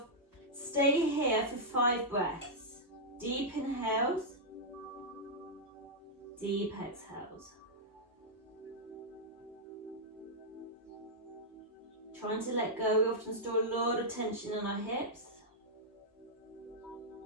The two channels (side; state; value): both; normal; correlation -0.07